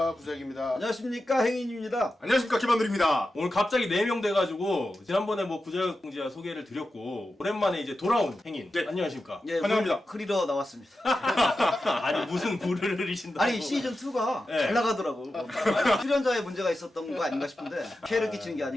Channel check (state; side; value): normal; both; correlation 0.91